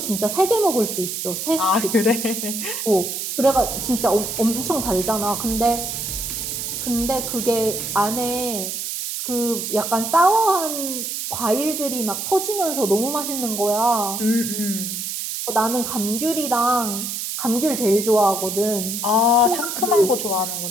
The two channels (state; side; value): noise; right; hiss, 4 dB below the sound